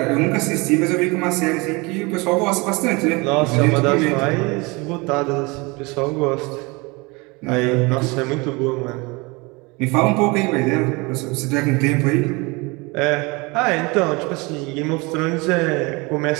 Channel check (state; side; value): quieter; left; 26.2 dB